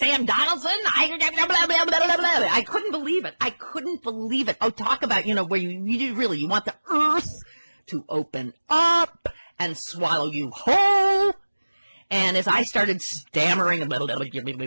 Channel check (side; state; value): both; inverted; correlation -1.00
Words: Donaldson. I couldn't believe it. I couldn't believe it. Oh, talk about, where you want the earth to open up and swallow you whole. And as I started stammering, I'm so